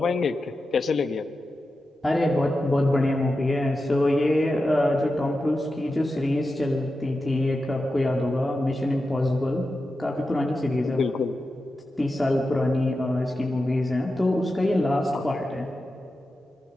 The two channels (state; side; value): normal; both; correlation 0.91